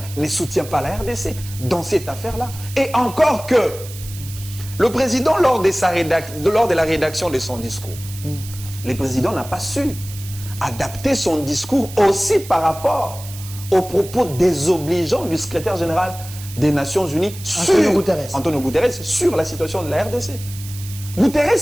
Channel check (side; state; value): right; noise; hiss, 15 dB below the sound